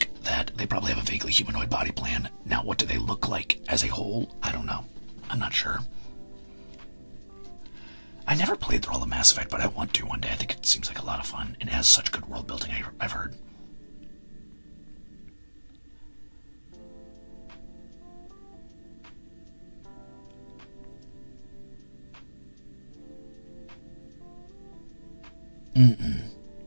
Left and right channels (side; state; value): both; inverted; correlation -1.00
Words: that they probably have a vaguely humanoid body plan. Now, what do they look like as a whole? I don't know. I'm not sure. I never played through all the Mass Effect, but I want to one day. I think it seems like a lot of fun, and it has such good world building, I've heard.